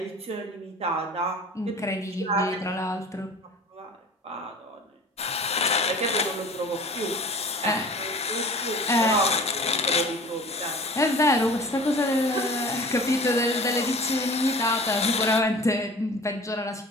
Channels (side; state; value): both; normal; correlation 0.43